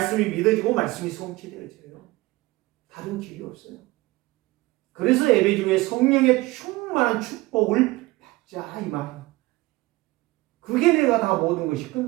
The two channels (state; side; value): quieter; left; 20.5 dB